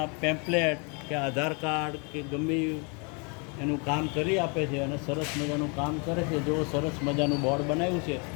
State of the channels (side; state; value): right; quieter; 34.0 dB